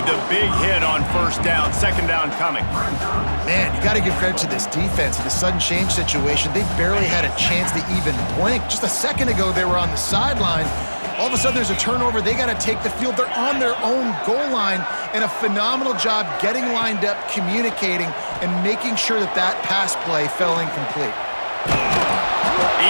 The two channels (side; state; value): both; inverted; correlation -1.00